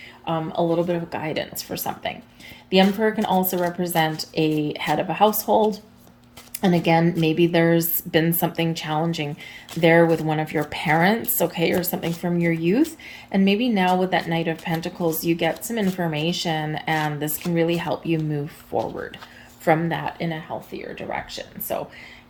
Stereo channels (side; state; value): both; identical; correlation 1.00